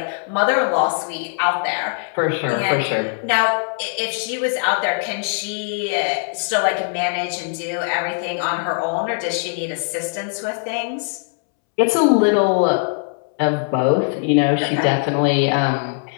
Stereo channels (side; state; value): right; silent; 65 dB below the other